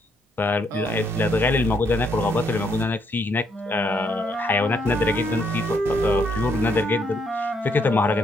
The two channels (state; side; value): normal; both; correlation 0.73